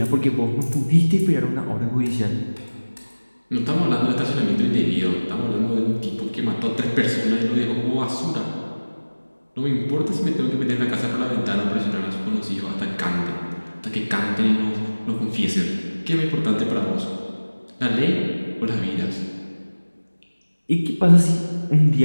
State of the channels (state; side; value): inverted; both; correlation -1.00